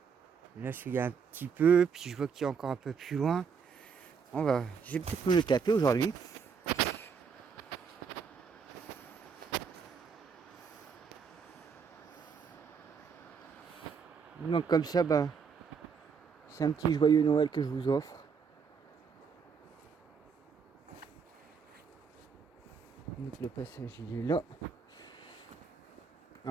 là, il y a un petit peu, puis je vois qu'il y a encore un peu plus loin. Je vais peut-être me le taper aujourd'hui. Donc comme ça, c'est un petit joyeux Noël que je vous offre. Donc le passage, il est là.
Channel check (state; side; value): quieter; left; 6.1 dB